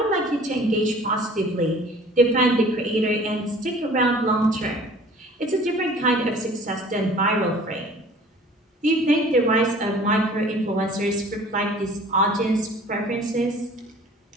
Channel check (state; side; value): normal; both; correlation 0.49